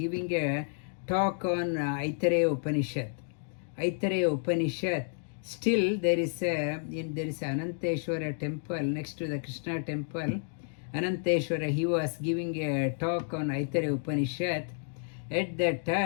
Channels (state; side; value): silent; right; digital silence